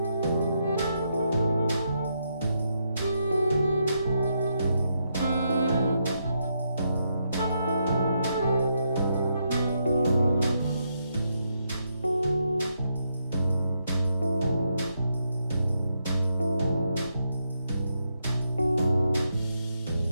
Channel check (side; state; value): both; inverted; correlation -0.80